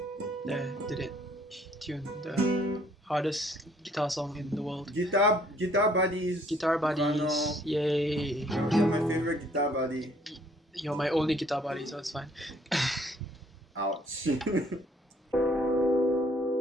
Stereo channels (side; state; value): both; normal; correlation 0.62